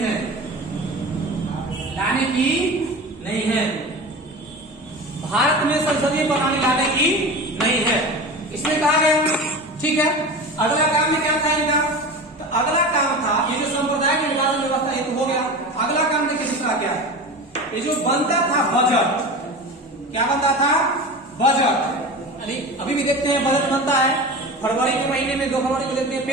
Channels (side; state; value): both; normal; correlation 0.31